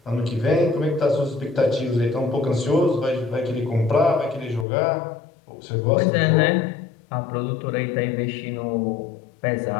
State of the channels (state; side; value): drops out; right; at 4.7 s